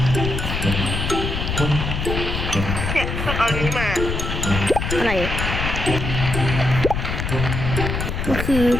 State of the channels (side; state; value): left; noise; rumble, 2 dB below the sound